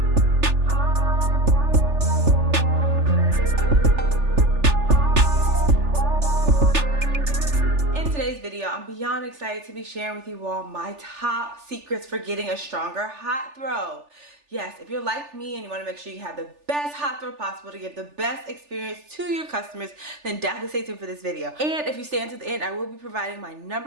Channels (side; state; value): left; late; 3.4 ms